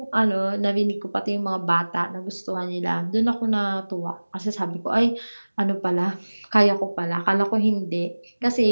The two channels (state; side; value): inverted; both; correlation -1.00